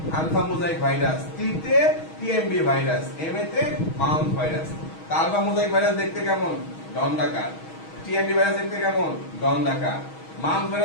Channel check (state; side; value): late; right; 6.3 ms